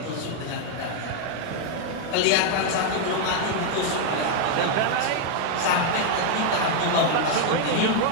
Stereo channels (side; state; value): both; different; correlation 0.00